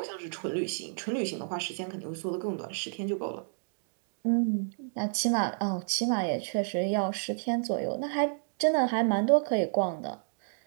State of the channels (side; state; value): left; silent; digital silence